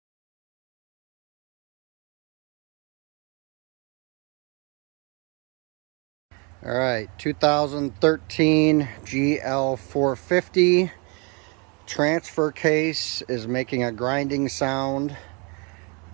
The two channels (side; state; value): left; quieter; 32.6 dB